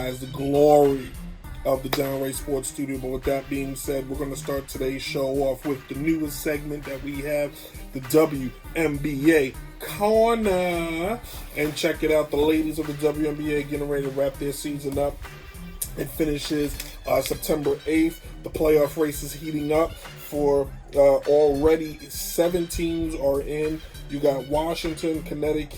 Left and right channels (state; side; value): identical; both; correlation 1.00